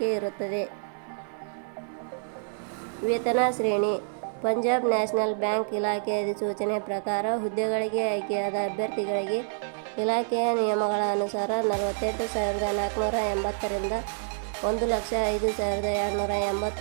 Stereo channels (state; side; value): silent; left; 60 dB below the other